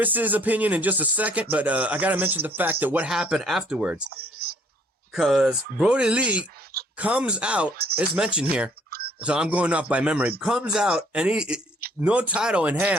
opinion in just a second, but I got to mention the fact that what happened afterwards. Because Brodie Lee comes out, it's mentioned here, so I'm going off by memory, comes out, and he, no title in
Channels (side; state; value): both; normal; correlation 0.62